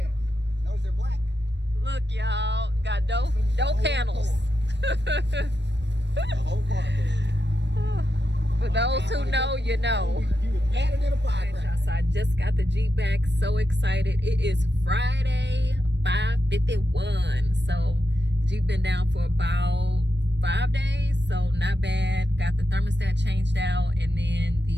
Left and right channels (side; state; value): left; late; 0.51 ms